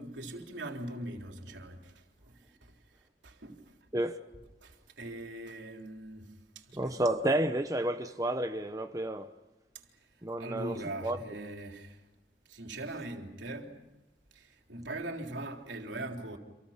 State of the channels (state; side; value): normal; both; correlation 0.58